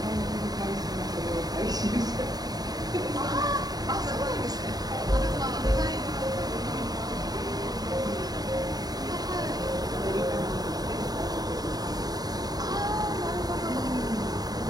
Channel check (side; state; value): left; late; 0.19 ms